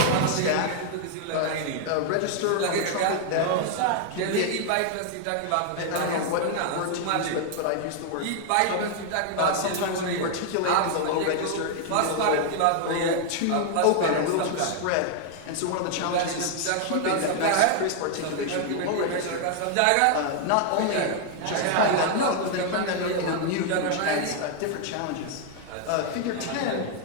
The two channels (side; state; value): both; different; correlation 0.00